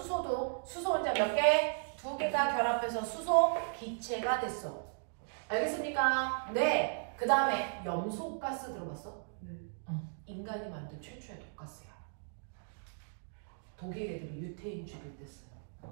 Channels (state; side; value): silent; left; digital silence